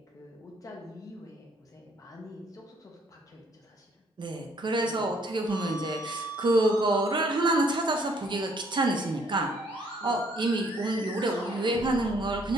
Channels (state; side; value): normal; both; correlation 0.65